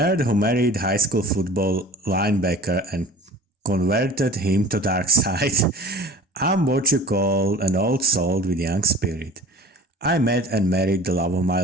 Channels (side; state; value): both; normal; correlation 0.41